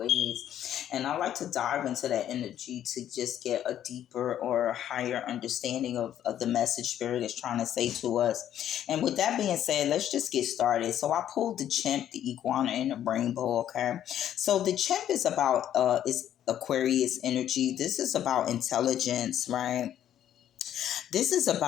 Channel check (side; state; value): right; quieter; 10.9 dB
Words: And I like to dive into that energy to just get a deeper or higher understanding of the message Spirit is trying to say to us. And with that being said, let's just get started. So I pulled the chimp, the iguana, and the rainbow, okay? So the chimp is about, is Aquarius energy. This is about intelligence, right? This is